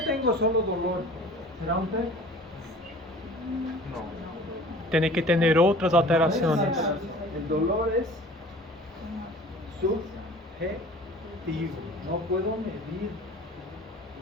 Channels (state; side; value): normal; both; correlation 0.45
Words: tengo solo dolor, ¿será un TEC? No. Tiene que tener otras alteraciones. El dolor es subjetivo, no puedo medir.